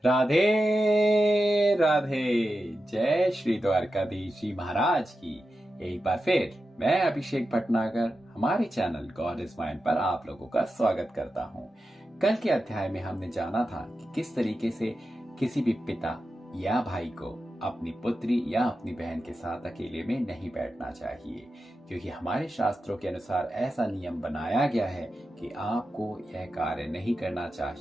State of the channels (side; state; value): both; normal; correlation 0.90